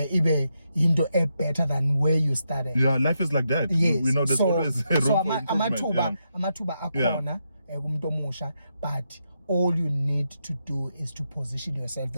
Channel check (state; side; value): inverted; both; correlation -0.83